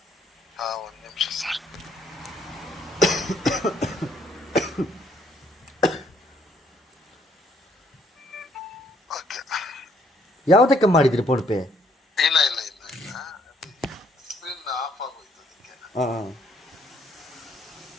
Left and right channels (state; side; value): normal; both; correlation 0.67